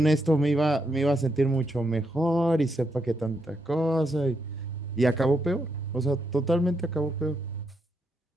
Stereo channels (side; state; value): both; normal; correlation 0.80